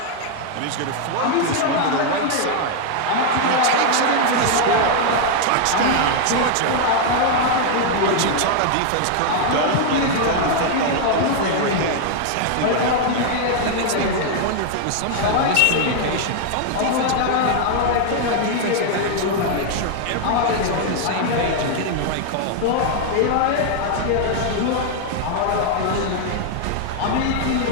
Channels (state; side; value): different; both; correlation 0.00